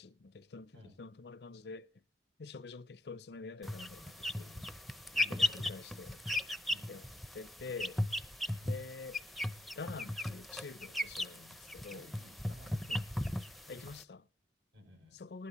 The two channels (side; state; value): both; normal; correlation 0.76